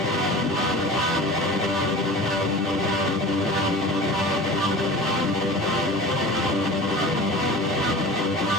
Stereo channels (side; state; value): both; normal; correlation 0.36